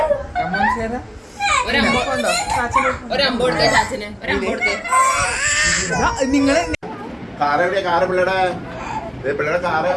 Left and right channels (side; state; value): both; identical; correlation 1.00